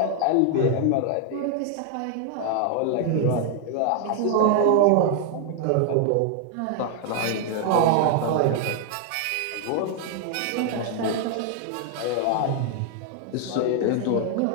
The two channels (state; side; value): different; both; correlation 0.00